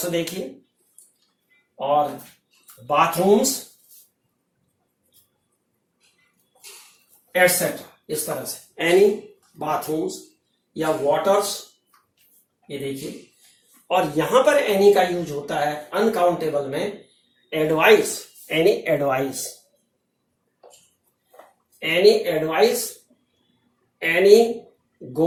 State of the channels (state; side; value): identical; both; correlation 1.00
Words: देखिए, और बाथरूम्स एटसेट्रा, इस तरह से एनी बाथरूम्स या वाटर्स, ये देखिए। और यहां पर एनी का यूज होता है अनकाउंटेबल में advice, any advice, any advice, any